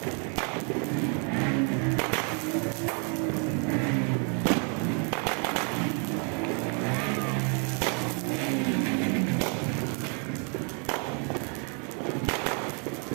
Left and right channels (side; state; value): left; quieter; 39.0 dB